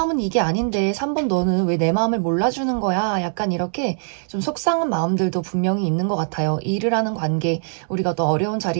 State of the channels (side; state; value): left; silent; digital silence